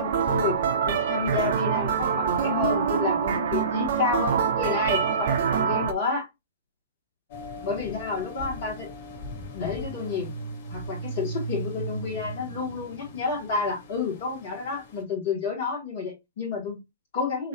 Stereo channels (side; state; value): both; inverted; correlation -0.32